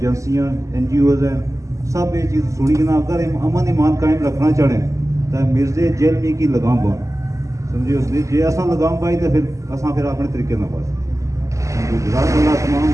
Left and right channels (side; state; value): left; late; 0.15 ms